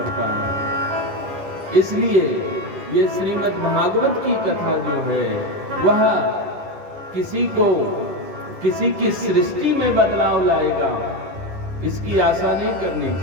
है। इसलिए ये श्रीमद् भागवत की कथा जो है, वह किसी की सृष्टि में बदलाव लाएगा, इसकी आशा नहीं करनी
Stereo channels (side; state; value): left; late; 10 ms